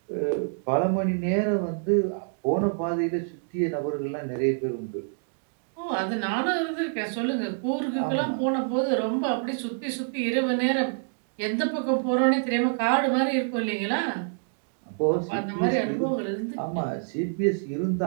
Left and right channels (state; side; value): silent; left; digital silence